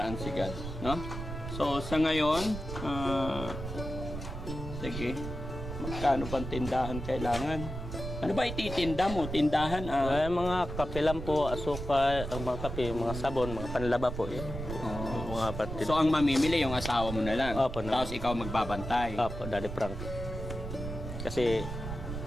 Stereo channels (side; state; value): right; noise; rumble, 7 dB below the sound